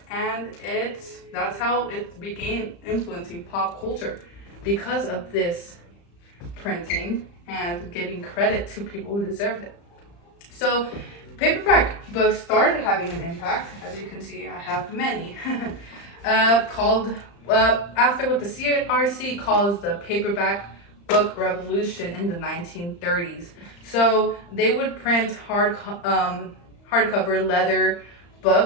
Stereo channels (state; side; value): late; right; 35 ms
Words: and that's how it began influencing pop culture because of this printing and giving credit to people who deserved it. So paperback books started having an impact. As you can see, I have many, called after what the CRC calls the paperback book revolution in the 1930s. So they would print hardcover leather